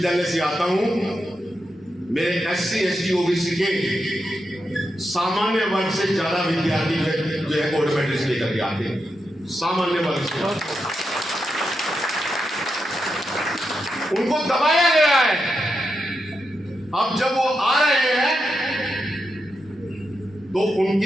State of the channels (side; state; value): both; normal; correlation 0.86